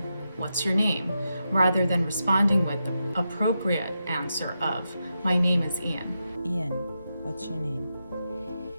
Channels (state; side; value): inverted; both; correlation -0.87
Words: what's your name? Rather than responding with the appropriate answer of, my name is Ian. Ian, what's your name?